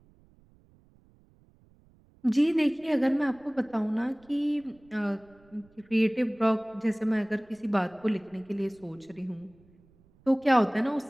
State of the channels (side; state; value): right; noise; rumble, 30 dB below the sound